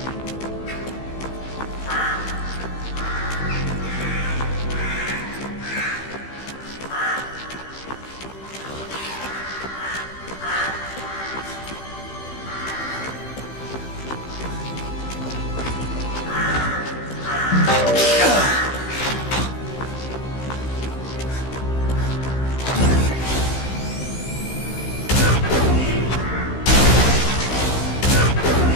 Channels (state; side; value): late; right; 15 ms